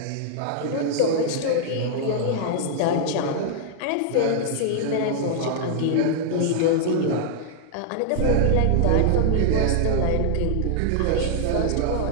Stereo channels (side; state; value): both; different; correlation -0.01